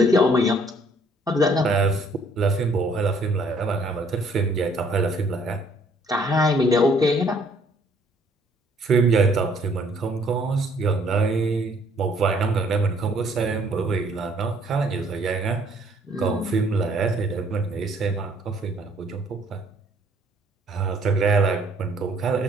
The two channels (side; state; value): both; normal; correlation 0.62